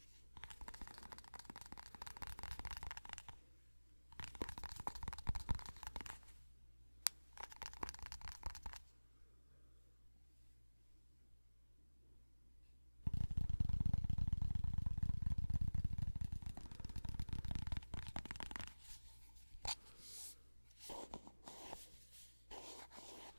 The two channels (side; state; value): both; inverted; correlation -1.00